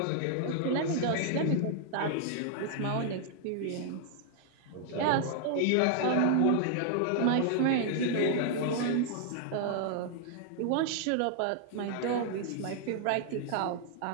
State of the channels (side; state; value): both; different; correlation 0.00